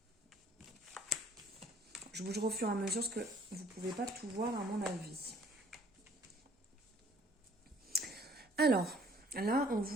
Je bouge au fur et à mesure parce que vous ne pouvez pas tout voir à mon avis. Alors, là, on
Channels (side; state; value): both; normal; correlation 0.58